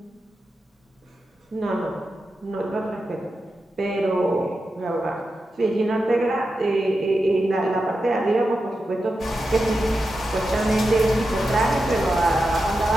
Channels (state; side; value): normal; both; correlation 0.90